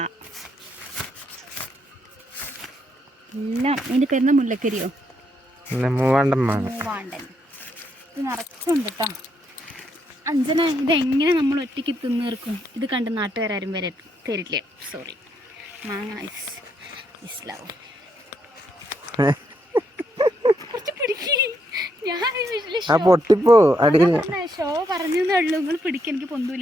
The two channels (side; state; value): both; normal; correlation 0.76